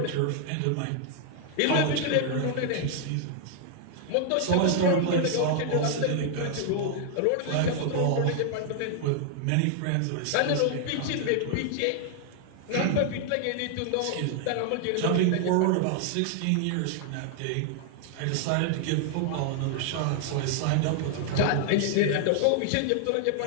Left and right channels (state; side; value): different; both; correlation 0.00